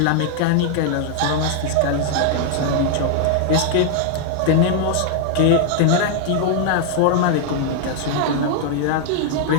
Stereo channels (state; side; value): different; both; correlation 0.00